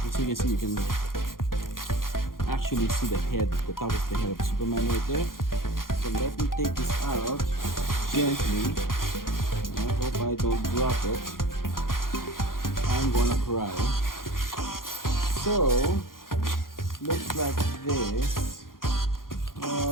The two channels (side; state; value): right; late; 0.91 ms